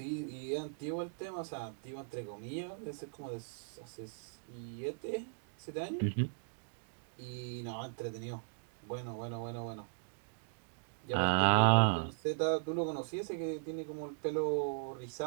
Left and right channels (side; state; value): left; silent; digital silence